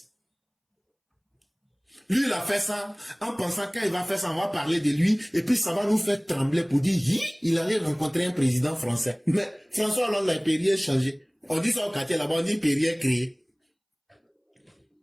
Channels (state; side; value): identical; both; correlation 1.00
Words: Lui, il a fait ça en pensant quand il va faire ça, on va parler de lui et puis ça va nous faire trembler pour dire il allait rencontrer un président français. Mais François Hollande, il ne peut rien changer. On dit ça au quartier là-bas, on dit il ne peut rien créer.